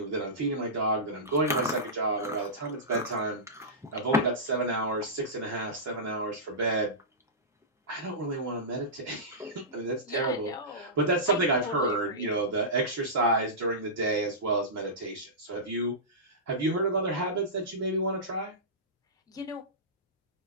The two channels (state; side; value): normal; both; correlation -0.18